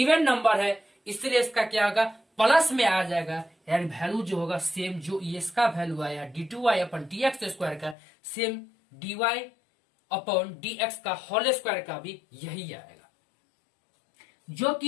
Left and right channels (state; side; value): drops out; right; at 8.0 s